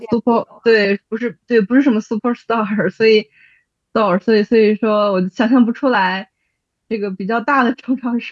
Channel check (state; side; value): identical; both; correlation 1.00